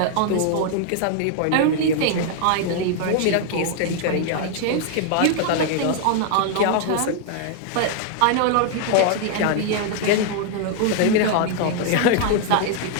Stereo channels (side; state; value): both; different; correlation 0.00